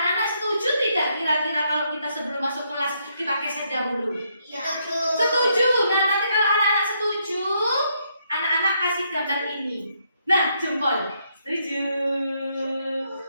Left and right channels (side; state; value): both; inverted; correlation -0.75